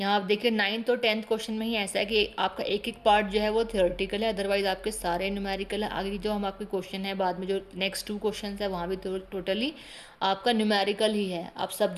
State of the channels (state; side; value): identical; both; correlation 1.00